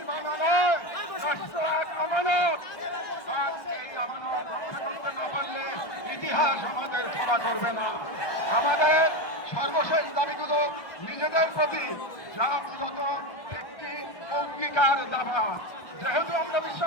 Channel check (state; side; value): late; right; 1.6 ms